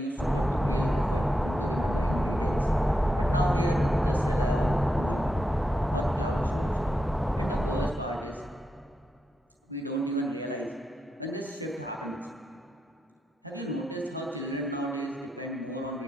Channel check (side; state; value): both; normal; correlation 0.85